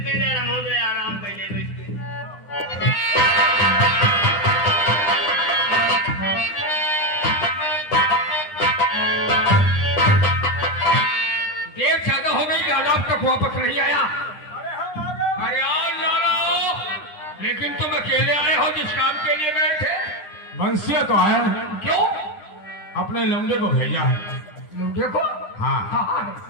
पे आराम कर ले बैठ के। देर ज्यादा हो गई, लाला अब तक वापस नहीं आया। अरे आओ लाला, लेकिन तुम अकेले आए हो जिस काम के लिए गए थे? बंसिया तो आया हूँ। क्यों? अपने लौंडे को भेजा है। लौंडे को? हाँ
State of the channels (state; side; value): late; right; 9.9 ms